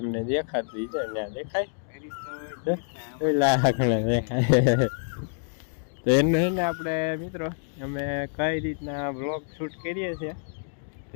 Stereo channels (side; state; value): right; silent; digital silence